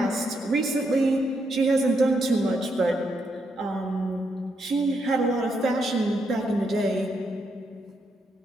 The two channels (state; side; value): normal; both; correlation 0.79